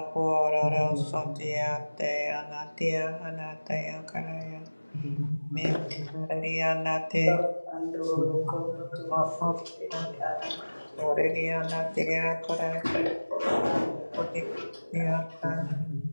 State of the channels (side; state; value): both; inverted; correlation -1.00